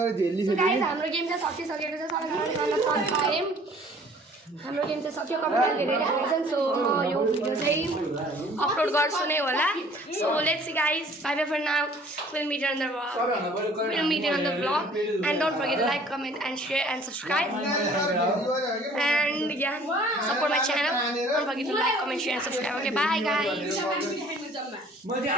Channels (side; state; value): both; normal; correlation 0.53